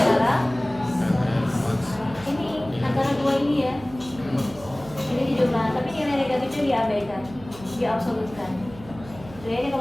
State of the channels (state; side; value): noise; right; hum, 18 dB below the sound